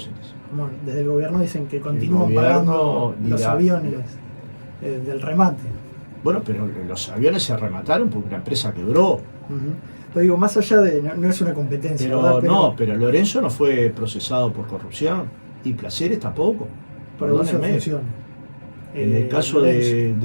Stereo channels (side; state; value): both; inverted; correlation -1.00